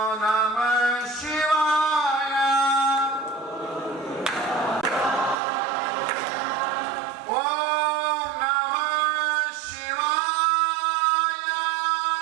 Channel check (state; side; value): drops out; left; at 5.4 s